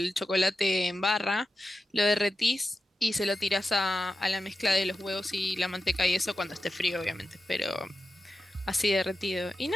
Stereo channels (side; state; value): both; normal; correlation 0.92